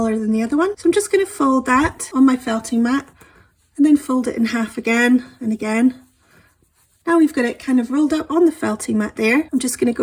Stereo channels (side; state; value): both; identical; correlation 1.00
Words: than the other one. So I'm just going to fold that on my felting mat and then fold it in half again and again. Now we've got it kind of rolled up on the felting mat there. I'm just going to